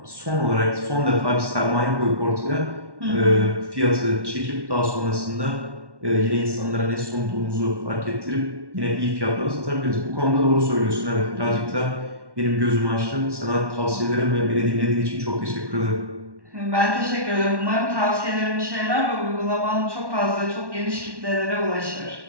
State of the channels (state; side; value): late; left; 1.1 ms